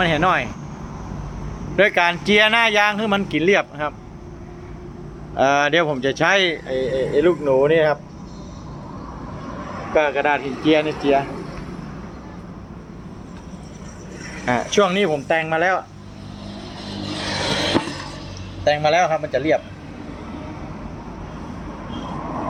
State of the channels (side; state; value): both; identical; correlation 1.00